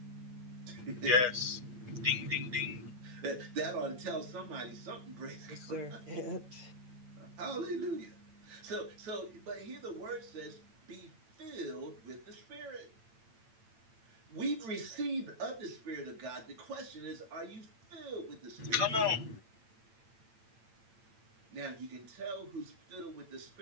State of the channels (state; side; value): late; left; 8.9 ms